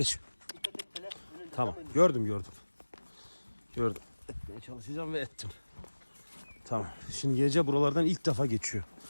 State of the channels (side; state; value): both; inverted; correlation -1.00